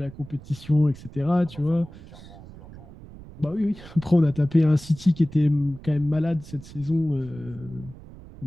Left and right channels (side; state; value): right; noise; rumble, 17 dB below the sound